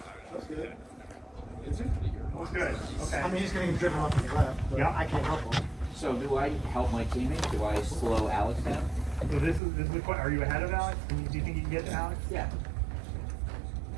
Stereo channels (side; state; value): left; drops out; at 9.6 s